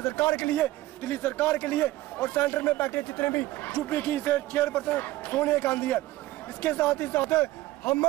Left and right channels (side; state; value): left; quieter; 16.8 dB